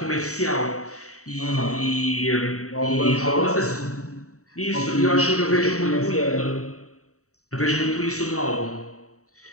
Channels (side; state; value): right; late; 0.65 ms